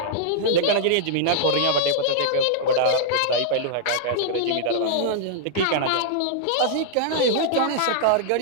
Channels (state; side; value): different; both; correlation -0.01